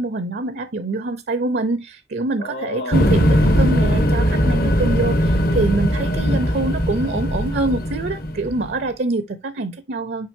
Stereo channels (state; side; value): normal; both; correlation 0.67